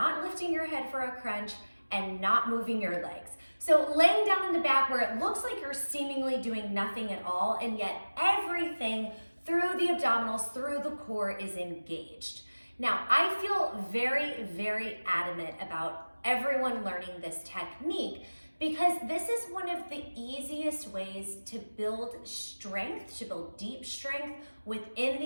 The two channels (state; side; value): inverted; both; correlation -1.00